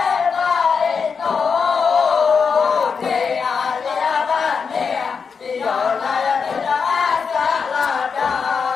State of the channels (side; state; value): right; quieter; 5.7 dB